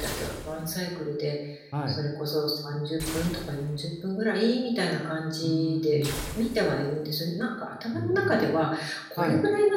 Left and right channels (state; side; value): identical; both; correlation 1.00